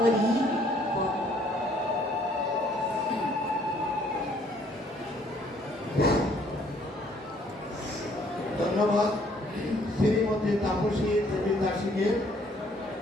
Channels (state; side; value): normal; both; correlation 0.63